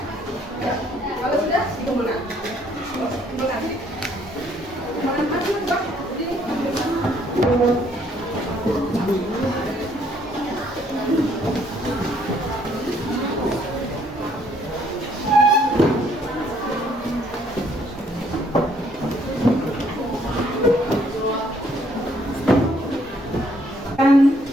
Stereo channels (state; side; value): normal; both; correlation 0.66